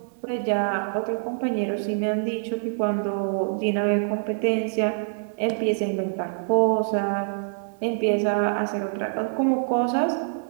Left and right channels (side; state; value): left; silent; 62 dB below the other